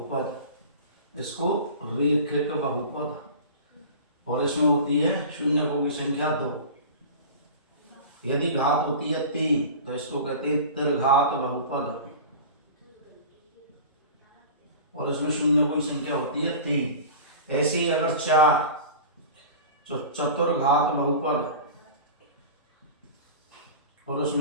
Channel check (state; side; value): inverted; both; correlation -0.35